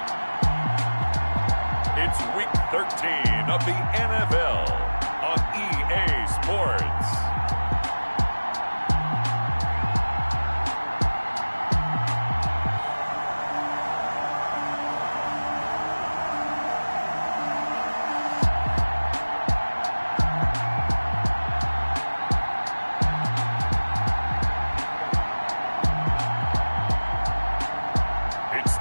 it's Week 13 of the NFL on EA Sports.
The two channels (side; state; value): both; inverted; correlation -1.00